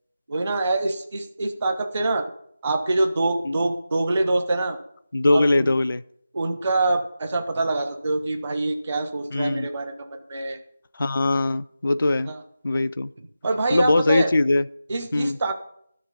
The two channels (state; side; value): inverted; both; correlation -0.91